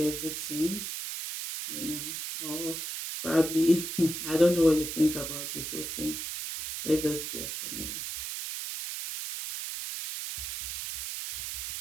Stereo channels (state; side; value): noise; right; hiss, 5 dB below the sound